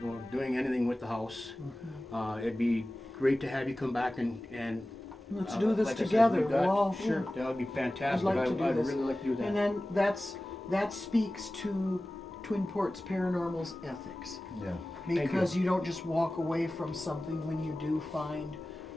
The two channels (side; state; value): both; normal; correlation 0.96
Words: doing anything with the house. It'd be great to have you come back and Let's do this like I said, together. we've got- We'll all- sure, that would be I'd fantastic. like to do I'd this. really like to do that. And then that speaks to Twin Ports Paranormal's ethics. Yeah. Because you don't just walk away from something when you do find